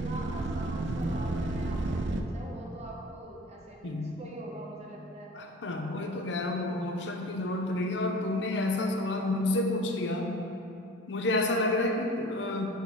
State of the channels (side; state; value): both; normal; correlation 0.42